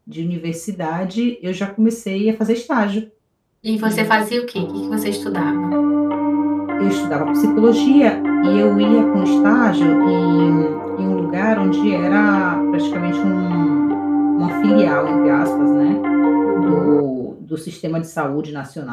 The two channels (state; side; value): identical; both; correlation 1.00